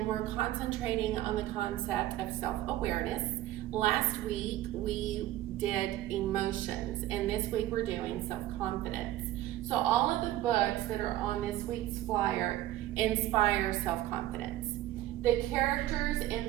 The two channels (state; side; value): quieter; left; 14.5 dB